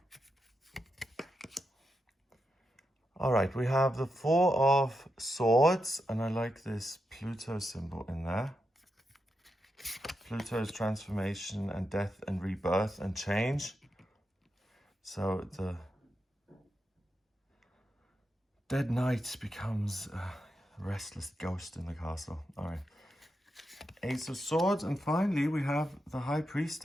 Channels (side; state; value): both; normal; correlation 0.86